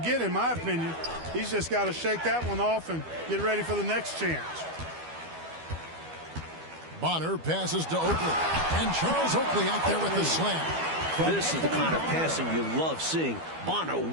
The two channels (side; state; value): left; late; 12 ms